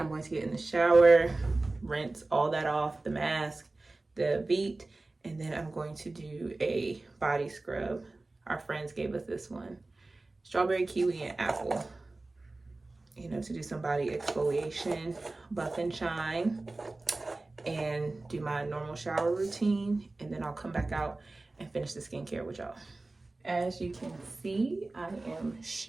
going to get in the shower, rinse all that off, the mask, the Veet, and then I'm going to do a body scrub. Our friends gave us this one, strawberry, kiwi, and apple, you know, to do some body exfoliation, buff and shine, and do my normal shower routine. And then I'll come back out and finish the skincare with y'all. As you can see, I am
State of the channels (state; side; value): quieter; left; 3.1 dB